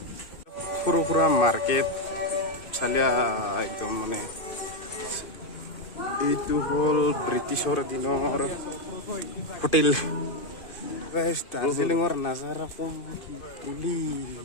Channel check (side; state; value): right; late; 2.5 ms